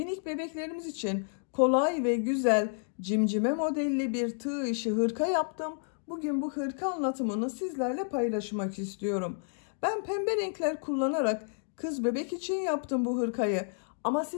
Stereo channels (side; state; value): right; silent; digital silence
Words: bebeklerimiz için kolay ve güzel cimcime modelli bir tığ işi hırka yaptım. Bugün bu hırka anlatımını sizlerle paylaşmak istiyorum. Ben pembe renkler kullanarak kız bebek için yaptım bu hırkayı. Ama